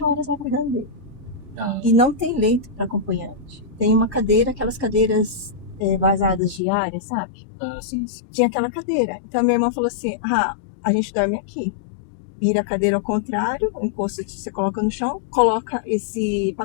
horas lá cuidando dele. E não tem leito para acompanhante. Tem uma cadeira, aquelas cadeiras vazadas diárias, sabe? Ah, sim, sim. Tinha aquela cadeira. Então a minha irmã falou assim: ah, a gente dorme aqui. Vira a cadeira ao contrário, o encosto você coloca no chão, coloca esse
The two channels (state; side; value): drops out; right; at 6.6 s